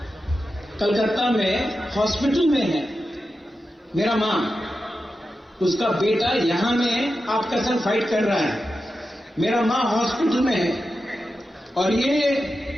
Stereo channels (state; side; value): normal; both; correlation 0.90